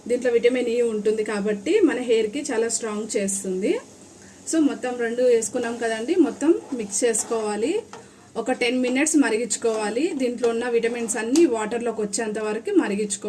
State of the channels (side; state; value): both; identical; correlation 1.00